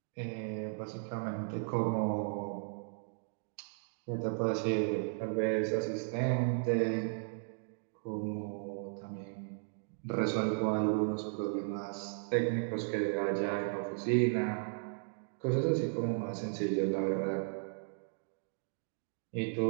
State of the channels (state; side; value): silent; left; digital silence